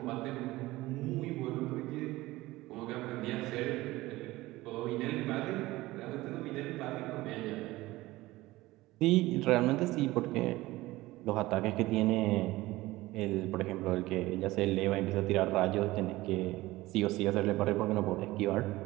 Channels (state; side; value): quieter; left; 18.6 dB